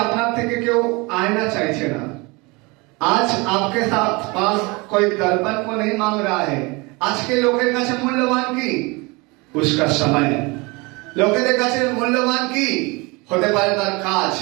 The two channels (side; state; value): left; quieter; 26.3 dB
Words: আপনার থেকে কেউ আয়না চাইছে না। आज आपके साथ पास कोई दर्पण को नहीं मांग रहा है। আজকে লোকের কাছে মূল্যবান কি? उसका समय। লোকেদের কাছে মূল্যবান কি? হতে পারে তার কাজ।